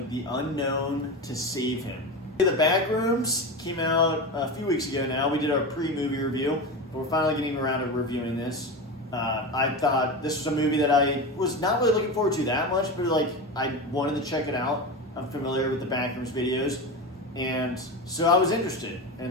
the unknown to save him. The Backrooms came out a few weeks ago now. We did our pre-movie review, but we're finally getting around to reviewing this. I thought this was a movie that I was not really looking forward to that much, but like I wanted to check it out. I'm familiar with the Backrooms videos, and so I was interested,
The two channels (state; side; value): normal; both; correlation 0.22